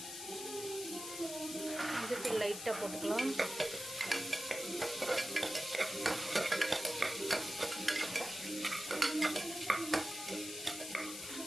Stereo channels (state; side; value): noise; left; hiss, 8 dB below the sound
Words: மஞ்சத்தூள் லைட்டாக போட்டுக்கலாம்.